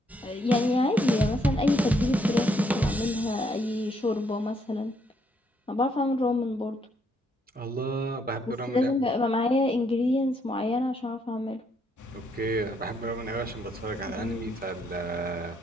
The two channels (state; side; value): normal; both; correlation 0.72